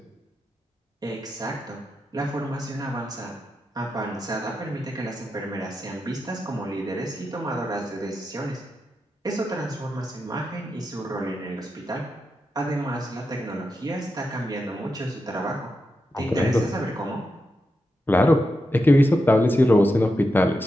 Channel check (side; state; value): both; normal; correlation 0.87